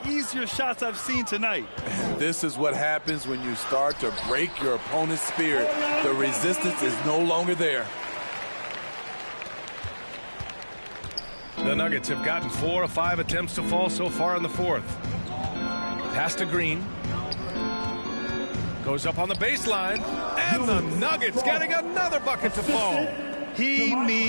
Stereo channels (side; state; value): both; inverted; correlation -1.00